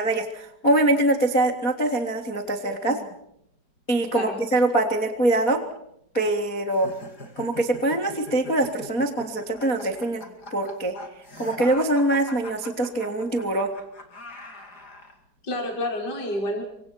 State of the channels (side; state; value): right; late; 4.2 ms